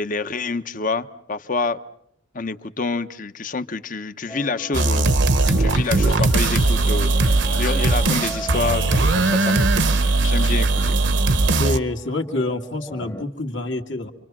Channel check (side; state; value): both; normal; correlation 0.62